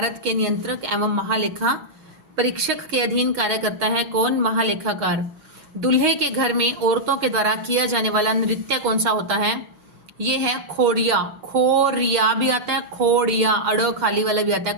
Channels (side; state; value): left; late; 6.4 ms